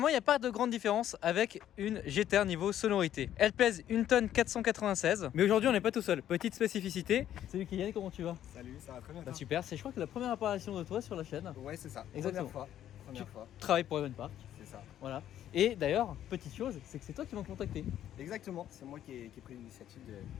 il n'y a pas de grande différence avec une GTR niveau sonorité. Elle pèse 1 tonne 496. Mais aujourd'hui on n'est pas tout seul. Petite spécificité. Salut Kylian, comment tu vas? Salut, ça va très bien. Super, je crois que c'est la première apparition de toi sur la chaîne. Ouais, c'est ça. Exactement. Première fois. Tu travailles pour Evenpark. C'est ça. Voilà. Et d'ailleurs, petite chose, c'est que c'est toi qui m'as contacté. Exactement. C'est moi qui ai pris l'initiative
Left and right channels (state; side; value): quieter; right; 11.3 dB